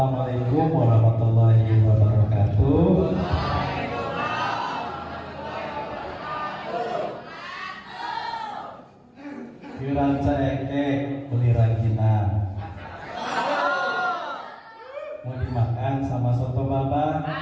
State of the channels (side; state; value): both; identical; correlation 1.00